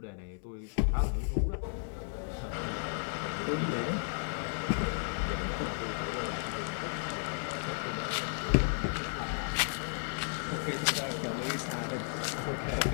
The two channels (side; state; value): right; silent; 55 dB below the other